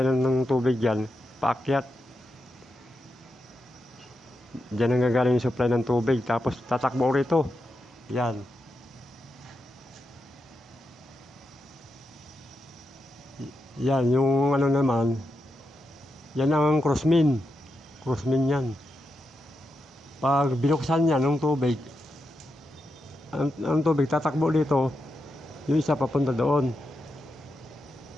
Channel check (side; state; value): both; normal; correlation 0.87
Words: ng tubig yan, paakyat. Diyan ang gagaling yung supply ng tubig, tapos tatakbo rito. Yan. Yan, yung ano naman, yan ang crossmin yan. Pag binuksan yan ng tubig, ang tubig tatakbo dito, yung isa papunta doon.